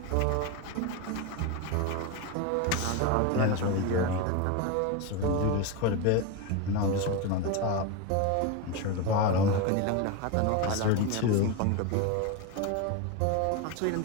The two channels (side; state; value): both; different; correlation 0.04